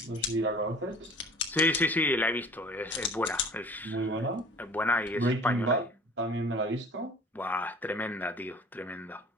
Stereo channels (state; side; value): normal; both; correlation 0.46